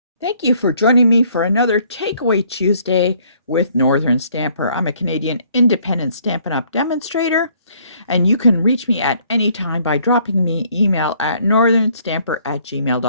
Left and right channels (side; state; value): both; inverted; correlation -0.63